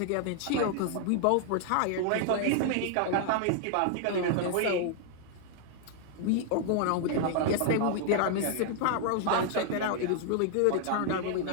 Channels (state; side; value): different; both; correlation 0.00